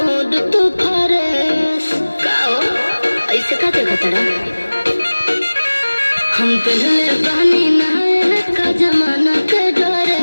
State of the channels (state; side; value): inverted; both; correlation -1.00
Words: तू फरेस काओ ऐसे का देखा तड़ा हम पहले बहनी नहाए का जमाना के